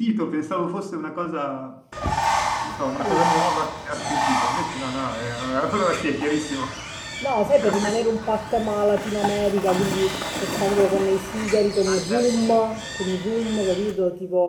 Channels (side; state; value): both; identical; correlation 1.00